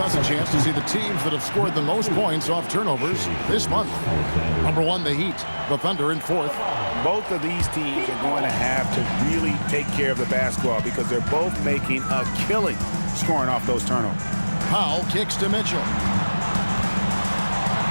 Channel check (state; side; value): inverted; both; correlation -1.00